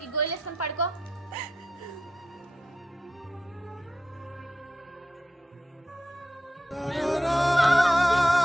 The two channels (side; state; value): both; normal; correlation 0.86